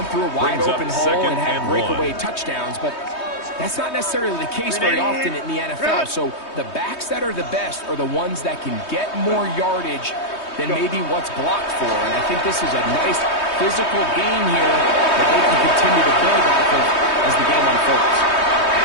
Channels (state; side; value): late; right; 3.2 ms